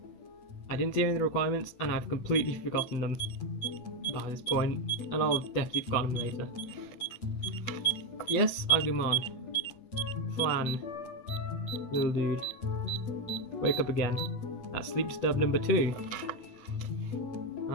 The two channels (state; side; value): late; right; 8.3 ms